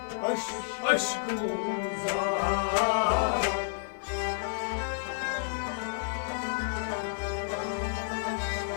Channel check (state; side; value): silent; right; 56 dB below the other